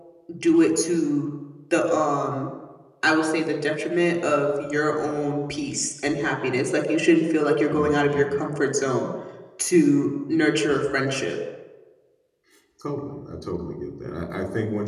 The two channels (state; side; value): identical; both; correlation 1.00